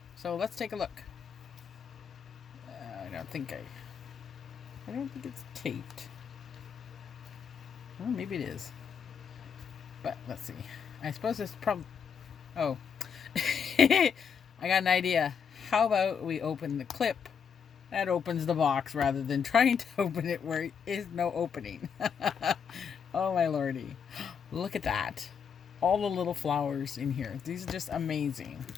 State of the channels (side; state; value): right; quieter; 6.9 dB